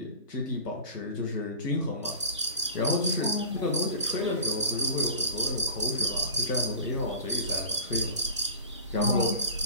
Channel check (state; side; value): inverted; both; correlation -0.38